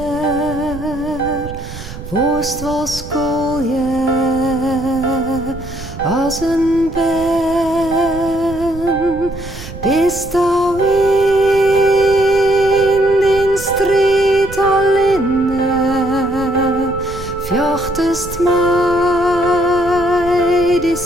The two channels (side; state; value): right; noise; rumble, 12 dB below the sound